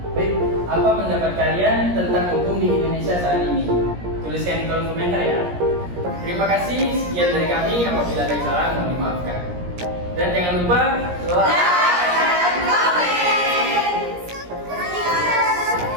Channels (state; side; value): late; left; 17 ms